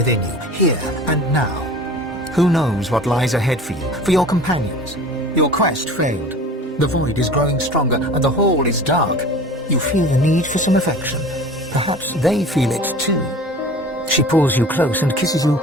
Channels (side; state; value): both; normal; correlation 0.41